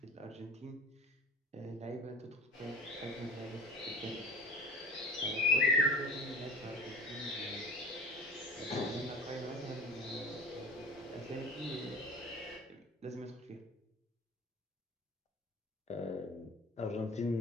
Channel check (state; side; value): normal; both; correlation 0.39